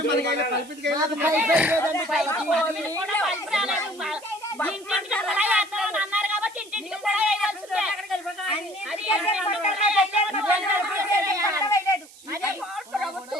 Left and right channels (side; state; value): right; noise; hiss, 22 dB below the sound